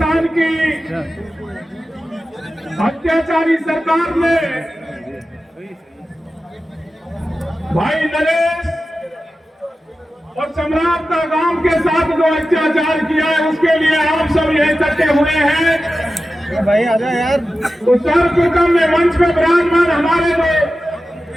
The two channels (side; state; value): both; normal; correlation 0.93